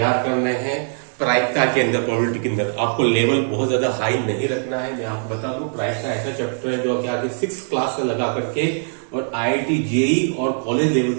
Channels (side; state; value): left; silent; digital silence